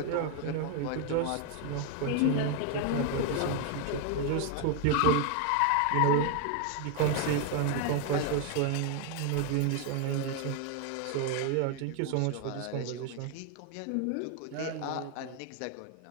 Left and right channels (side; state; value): both; different; correlation 0.01